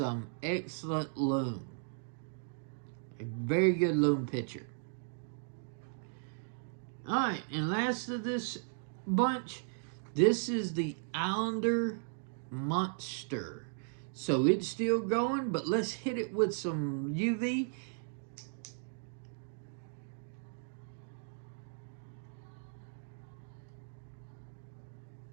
excellent loom. A very good loom picture. Alright, and last of this bunch, this is the Islander Monster. So it's still going, but let's hit it with some UV.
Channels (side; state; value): left; silent; digital silence